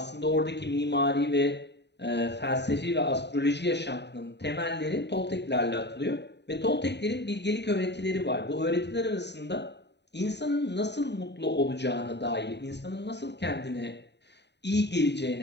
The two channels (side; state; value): right; late; 0.50 ms